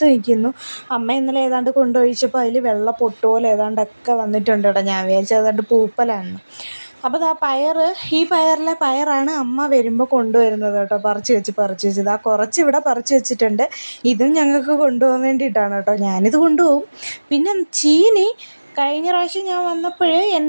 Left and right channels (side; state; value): both; inverted; correlation -1.00